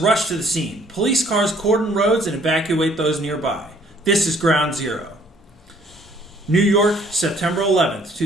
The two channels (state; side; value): normal; both; correlation 0.60